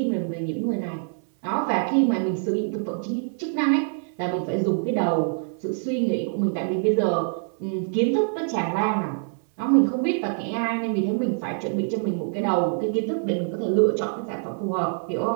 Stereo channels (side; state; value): left; silent; digital silence